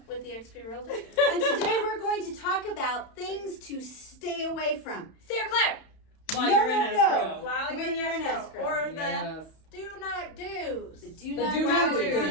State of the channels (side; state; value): right; late; 31 ms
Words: with the EXP Realty. And today we're going to talk about things to stay away from. Steer clear! While No, you're in no, no. escrow. While When you're you're in in escrow. escrow. Or Yes. the do not do's. The do The not do not do.